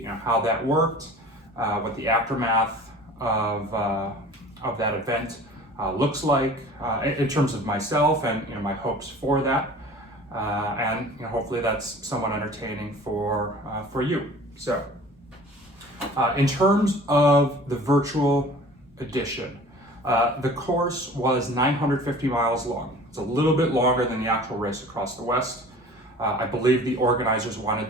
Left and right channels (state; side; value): normal; both; correlation 0.44